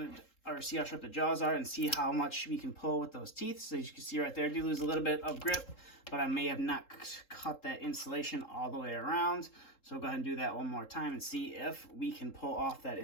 or see how sharp the jaws are, and see how much we can pull with those teeth. So as you can see right there, I do lose a little bit of grip, but I may have not cut that insulation all the way around. So we'll go ahead and do that one more time and see if we can pull off that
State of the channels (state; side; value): late; right; 3.7 ms